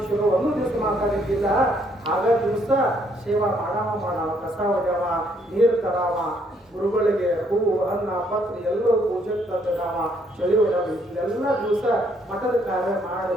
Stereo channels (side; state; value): both; normal; correlation 0.69